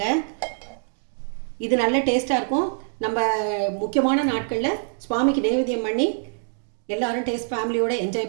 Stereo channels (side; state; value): left; silent; digital silence